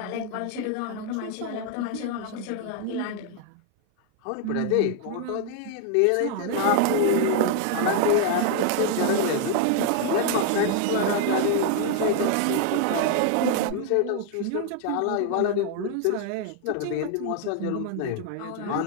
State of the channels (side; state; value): both; different; correlation 0.00